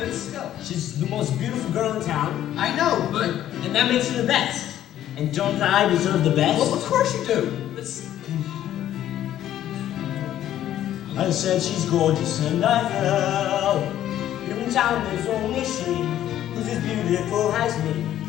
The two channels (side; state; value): right; quieter; 12.0 dB